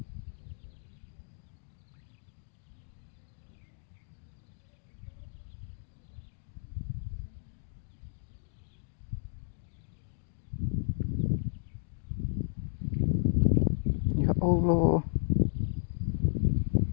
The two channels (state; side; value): silent; right; digital silence